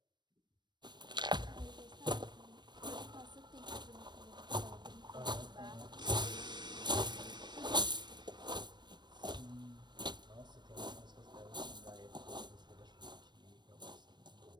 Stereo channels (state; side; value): late; left; 0.21 ms